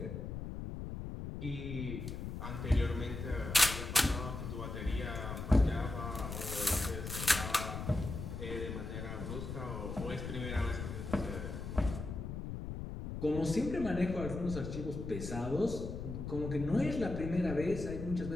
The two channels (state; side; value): noise; left; rumble, 6 dB below the sound